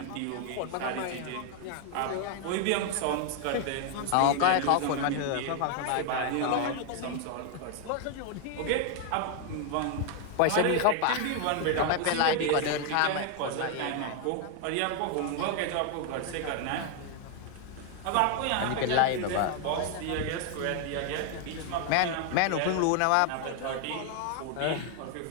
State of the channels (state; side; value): different; both; correlation 0.00